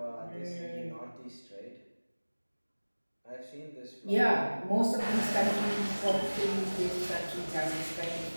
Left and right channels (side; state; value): both; inverted; correlation -1.00